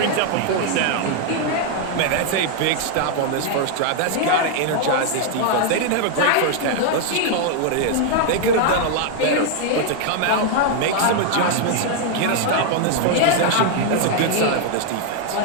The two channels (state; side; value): different; both; correlation 0.00